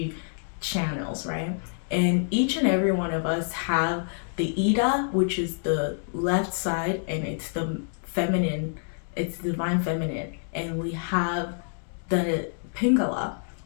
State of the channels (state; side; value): silent; right; digital silence